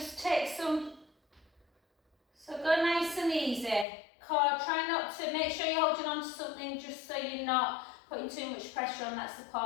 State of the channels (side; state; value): right; drops out; at 3.9 s